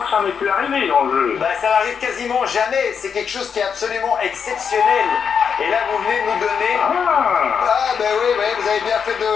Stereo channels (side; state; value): right; quieter; 6.8 dB